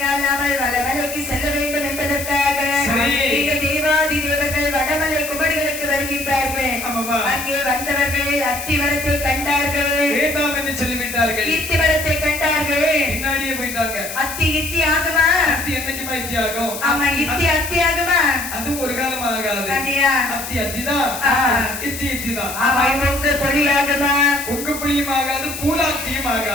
நாமல் வடமலைக்கு செல்ல வேண்டும் என்பதற்காக இந்த தேவாதி தேவர்கள் வடமலை குமரிகளுக்கு வருகின்றார்கள். அங்கே வந்தவர்கள் அத்தி மரத்தை கண்டார்கள். வேண்டாம் என்று சொல்லிவிட்டார்கள். இத்தி மரத்தை கண்டார்கள். பின்னாடியே போயிட்டாங்க. அத்தி இத்தி ஆகுமா? அத்தி என்னைக்குமா இத்தி ஆகும்? ஆமா, இத்தி அத்தி ஆகுமா? அது ஒரு காலம் ஆகாது. அத்தி அத்திதான், இத்தி இத்திதான். ஆமா, உங்க பொழியாகுமா? உங்க புளியும் ஆகாது, பூலாத்தியும்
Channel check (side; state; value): left; noise; hiss, 8 dB below the sound